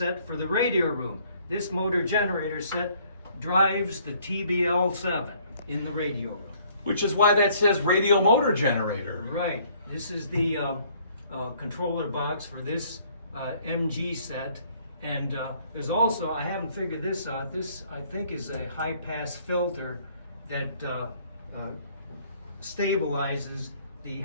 for the radio room. This motor generator set drives the TBL7 in the radio room. Which is why that says radio motor generator. Right. This is the controller box for this MG set. And there's also, I haven't figured this out, this I think is a high pass filter that stabilizes the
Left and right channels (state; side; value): inverted; both; correlation -0.61